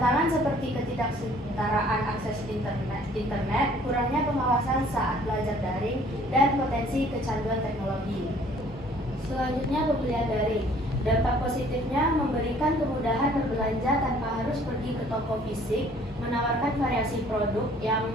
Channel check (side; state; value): both; normal; correlation 0.56